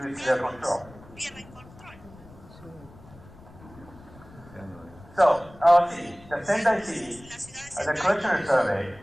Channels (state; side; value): noise; left; rumble, 21 dB below the sound